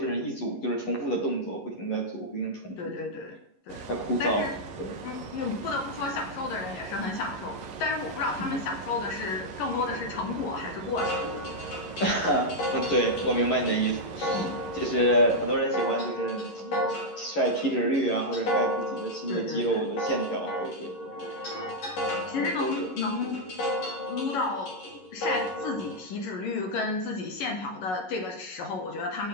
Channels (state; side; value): late; right; 11 ms